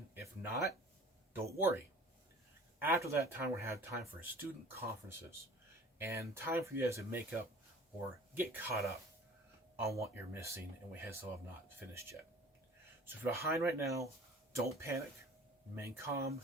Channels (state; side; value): normal; both; correlation 0.46